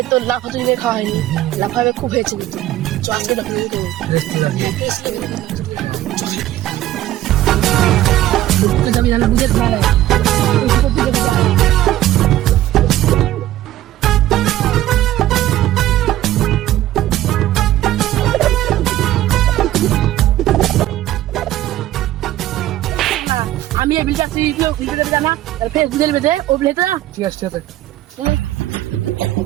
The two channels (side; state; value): left; quieter; 14.2 dB